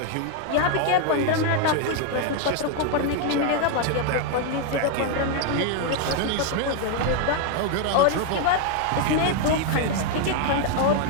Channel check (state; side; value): different; both; correlation 0.00